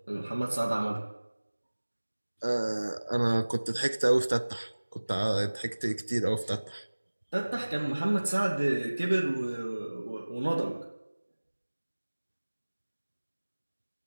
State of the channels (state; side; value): inverted; both; correlation -1.00